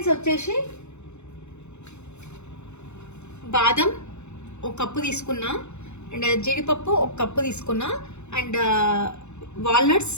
వచ్చేసి బాదం ఒక కప్పు తీసుకున్నా, అండ్ జీడిపప్పు ఒక కప్పు తీసుకున్నా, అండ్ వాల్నట్స్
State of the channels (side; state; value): right; late; 0.82 ms